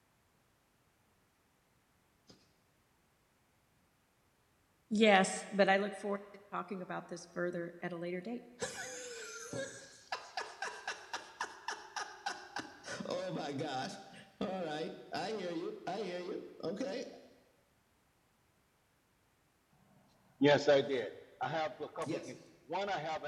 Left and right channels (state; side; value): identical; both; correlation 1.00